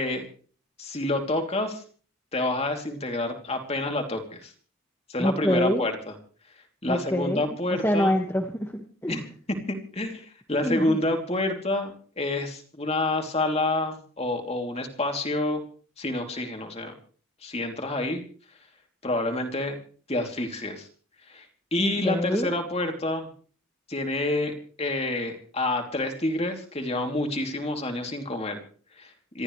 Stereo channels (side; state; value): both; normal; correlation 0.48